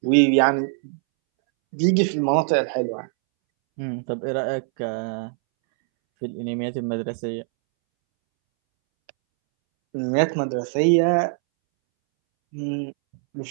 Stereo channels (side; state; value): left; silent; 63 dB below the other